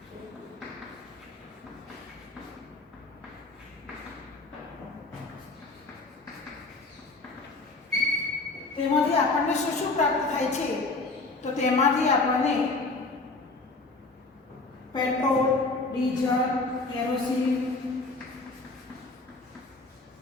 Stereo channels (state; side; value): quieter; right; 3.4 dB